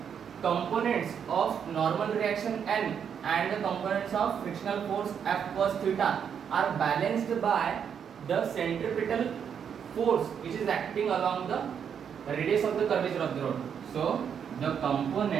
components of normal reaction n and the components of frictional force F cos theta are balanced by the centripetal force which is acting along the radius of the curvature of the rod. So the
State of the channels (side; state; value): left; quieter; 7.7 dB